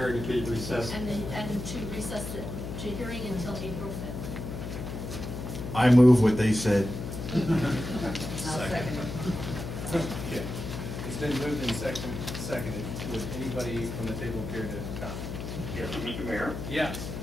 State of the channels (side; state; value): left; noise; hum, 6 dB below the sound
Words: to be recessed. And to recess the hearing until April 5th. I move what they said. I'll second it. Okay. It's been moved and seconded. Would anybody from the table care to comment? Yes, Mr. Mayor? Yes.